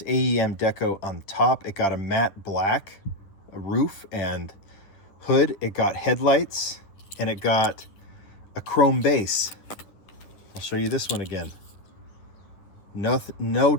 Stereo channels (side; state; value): right; late; 10 ms